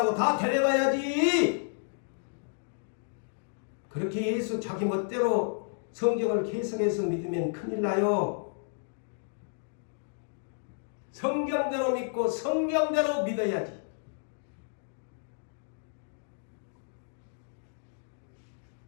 다 데려가야지. 그렇게 예수 자기 멋대로 성경을 해석해서 믿으면 큰일 나요. 성경대로 믿고 성경대로 믿어야지.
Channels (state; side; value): silent; right; digital silence